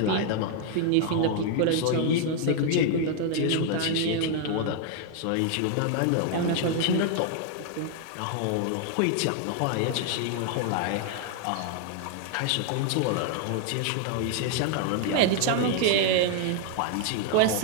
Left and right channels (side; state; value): both; different; correlation 0.00